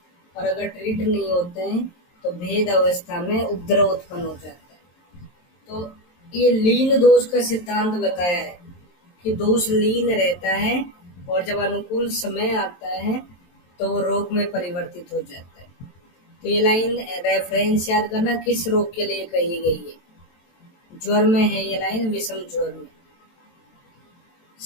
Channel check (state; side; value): late; right; 23 ms